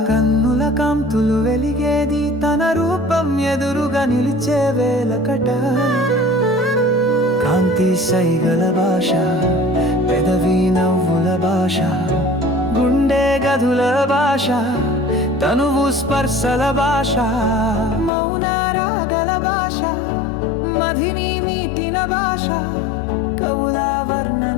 కన్నుల కాంతులు వెలిగేది తన రూపం ఎదురుగా నిలిచే వేలకట. కాంతి సైగల భాష, పెదవి నవ్వుల భాష, గుండె గదుల భాష, తనువు స్పర్శల భాష, మౌన రాగల భాష, మదిని మీటిన భాష, కవుల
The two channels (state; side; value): drops out; right; at 18.1 s